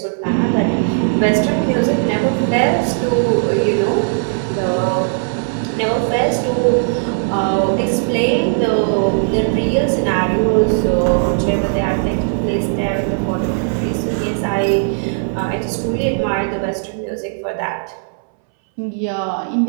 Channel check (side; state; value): left; silent; 64 dB below the other